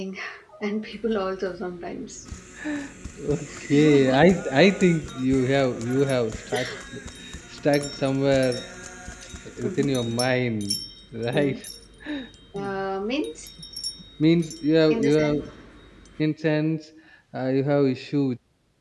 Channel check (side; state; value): both; identical; correlation 1.00